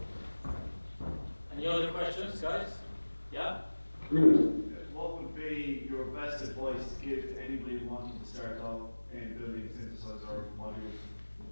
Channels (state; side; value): inverted; both; correlation -1.00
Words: Any other questions, guys? Yeah? Please. What would be your best advice to give to anybody wanting to start off in building synthesizer modules?